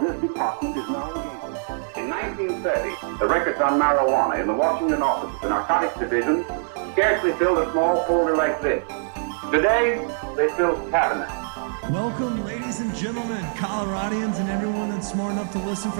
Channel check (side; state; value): left; silent; digital silence